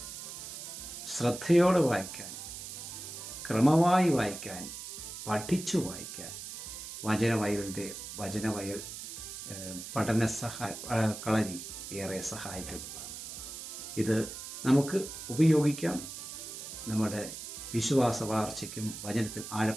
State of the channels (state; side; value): noise; right; hiss, 9 dB below the sound